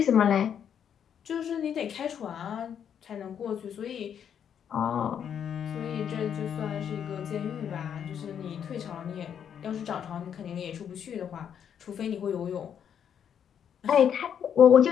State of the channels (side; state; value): right; quieter; 8.5 dB